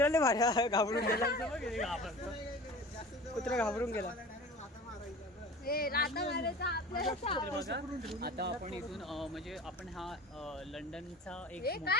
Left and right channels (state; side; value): normal; both; correlation 0.39